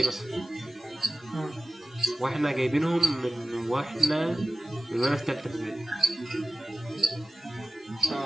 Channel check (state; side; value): normal; both; correlation 0.95